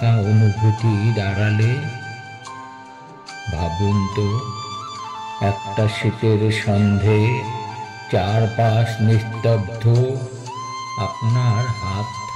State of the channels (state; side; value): identical; both; correlation 1.00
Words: অনুভূতির আড়ালে। ভাবুন তো, একটা শীতের সন্ধে, চারপাশ নিস্তব্ধ, আপনার হাত